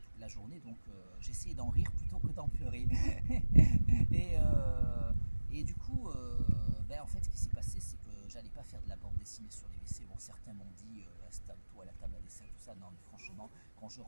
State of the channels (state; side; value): inverted; both; correlation -1.00